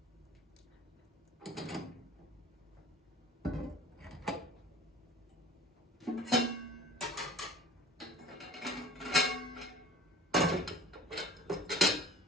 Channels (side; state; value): both; normal; correlation 0.44